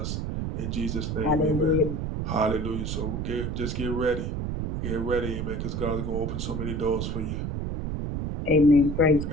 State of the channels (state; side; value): noise; right; rumble, 3 dB below the sound